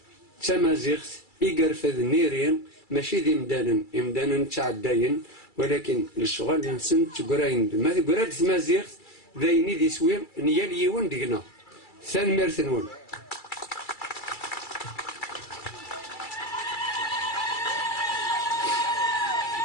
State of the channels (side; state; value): right; late; 2.3 ms